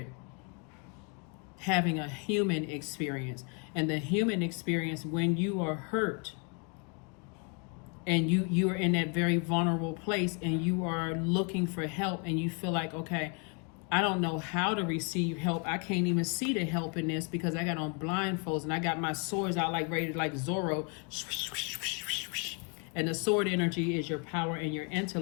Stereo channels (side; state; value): right; quieter; 35.9 dB